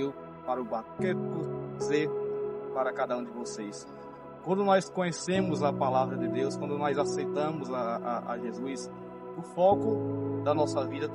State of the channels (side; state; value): both; identical; correlation 1.00